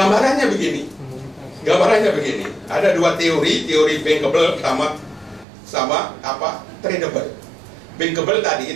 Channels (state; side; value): drops out; left; at 5.5 s